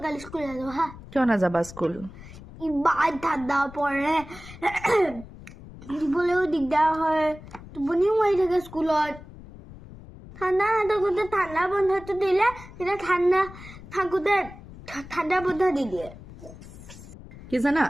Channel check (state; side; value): noise; left; rumble, 17 dB below the sound